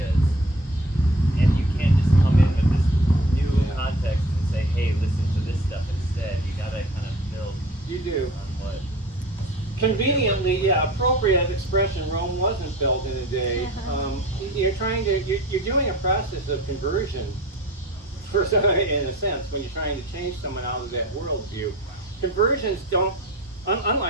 and you can't just come in with this new context and say, hey, listen to this stuff instead. You gotta kind of build You do. on what. Conveniently, yeah, appropriate expression. Rome wasn't built in a day. You're doing a process of conversion, for some, in a sense, when you're trying to change someone out of that worldview. Conversions don't,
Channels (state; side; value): normal; both; correlation 0.42